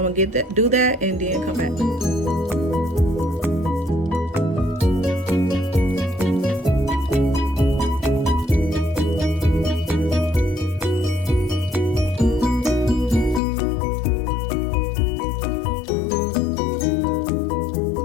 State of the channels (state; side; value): drops out; right; at 13.4 s